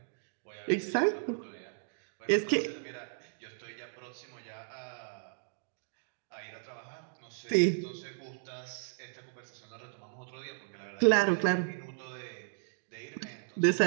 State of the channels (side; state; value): left; silent; digital silence